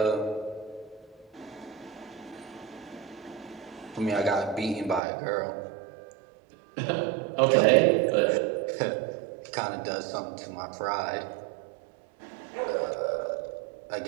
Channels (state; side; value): drops out; left; at 5.0 s